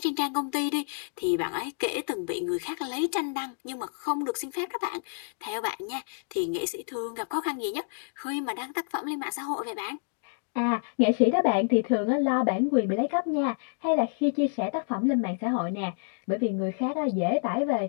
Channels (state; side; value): silent; right; digital silence